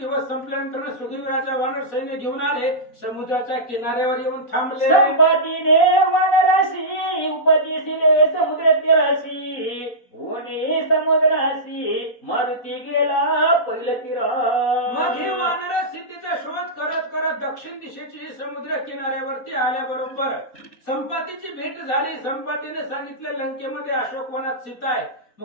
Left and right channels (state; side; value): late; right; 4.1 ms